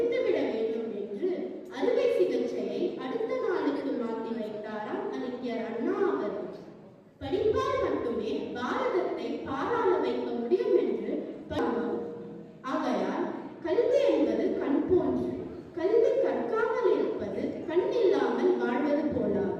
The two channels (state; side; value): identical; both; correlation 1.00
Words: வேண்டும் என்று அறுவை சிகிச்சையை அடுத்த நாளுக்கு மாற்றி வைத்தாராம் அறிஞர் அண்ணா அவர்கள். படிப்பால் மட்டுமே பாரதத்தை பாராள வைக்க முடியும் என்று ஆகையால் கல்வி என்பது கண் போன்று. கல்வி கற்காமல் இருப்பது கண் இல்லாமல் வாழ்வது